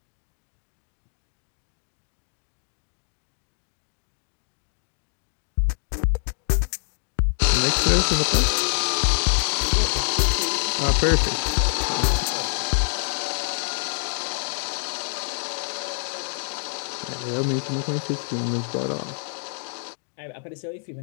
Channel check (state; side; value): silent; right; digital silence